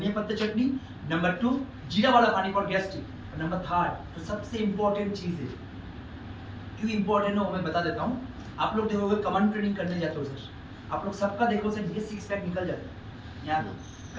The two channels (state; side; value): identical; both; correlation 1.00